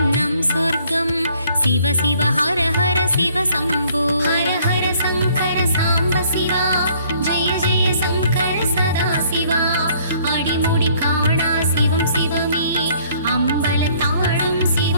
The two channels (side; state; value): both; inverted; correlation -0.61